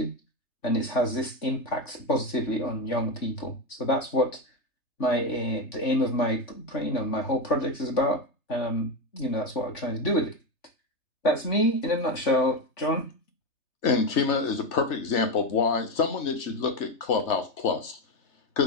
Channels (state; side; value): late; right; 3.3 ms